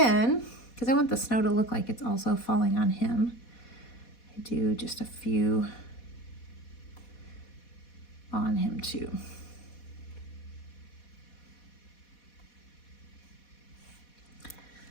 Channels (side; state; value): right; late; 4.1 ms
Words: because I want the snow to look like it's also falling on him, I do just a few on him too.